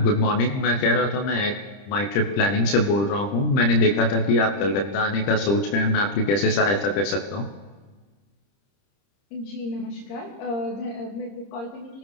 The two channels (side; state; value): right; late; 30 ms